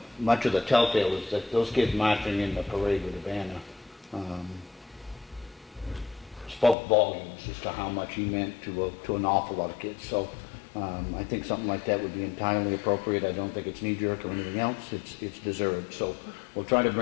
much of the telltale is that those kids marching in the parade with the banner spoke volumes as to how much he meant to an awful lot of kids. So I think something like that would be entirely appropriate. I don't think it's knee-jerk or anything else. It's deserved. So we'll try to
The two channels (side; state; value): right; drops out; at 6.8 s